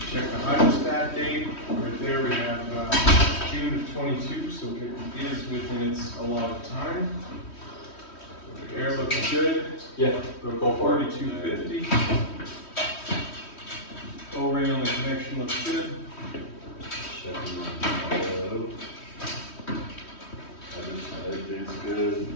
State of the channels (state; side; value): late; right; 3.1 ms